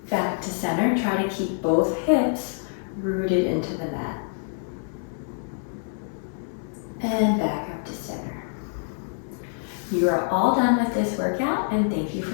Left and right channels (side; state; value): right; silent; digital silence